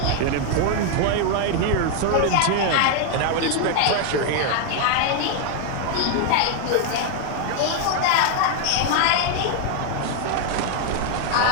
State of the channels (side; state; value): both; different; correlation 0.00